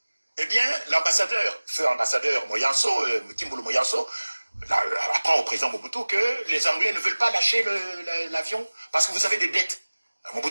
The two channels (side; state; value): both; inverted; correlation -1.00